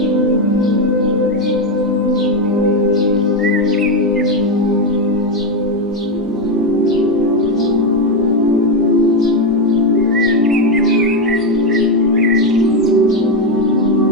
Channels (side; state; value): both; normal; correlation 0.08